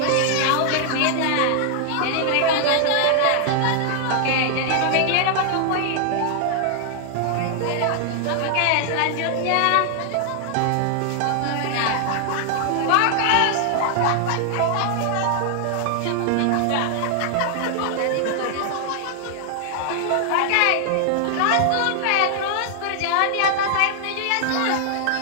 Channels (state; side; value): different; both; correlation 0.00